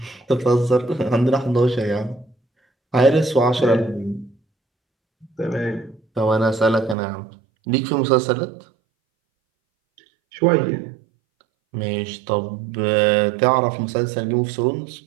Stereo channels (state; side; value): drops out; left; at 7.0 s